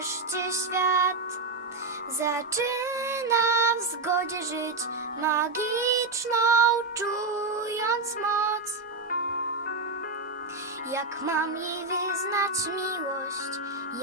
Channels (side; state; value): left; quieter; 3.5 dB